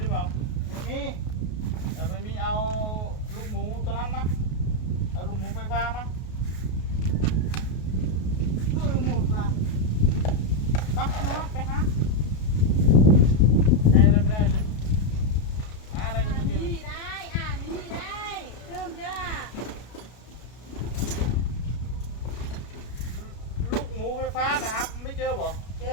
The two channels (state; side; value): late; right; 33 ms